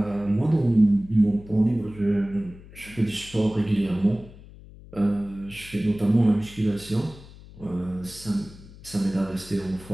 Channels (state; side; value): noise; left; hum, 19 dB below the sound